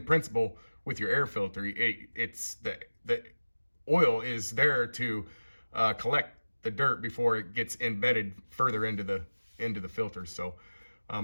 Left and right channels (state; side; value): inverted; both; correlation -1.00